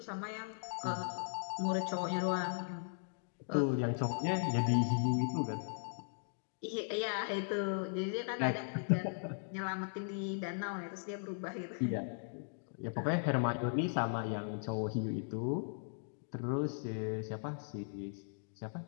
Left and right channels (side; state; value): right; silent; digital silence